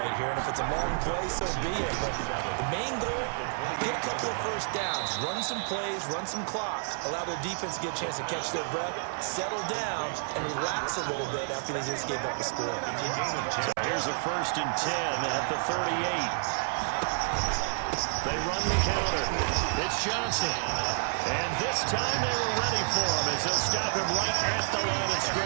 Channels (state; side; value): silent; left; 58 dB below the other